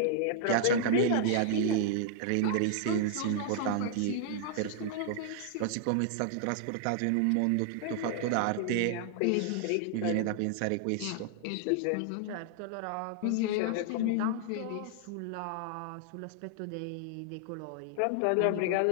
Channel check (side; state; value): both; different; correlation -0.01